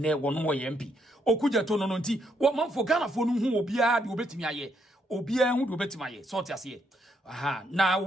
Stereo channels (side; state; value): both; normal; correlation 0.74